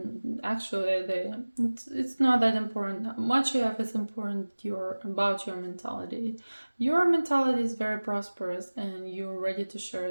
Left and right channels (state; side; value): inverted; both; correlation -1.00